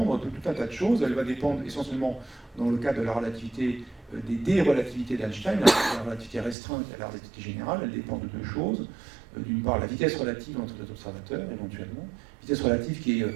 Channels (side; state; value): left; drops out; at 6.6 s